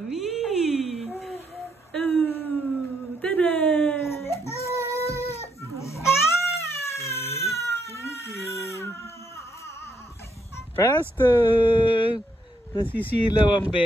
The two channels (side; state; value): both; normal; correlation 0.75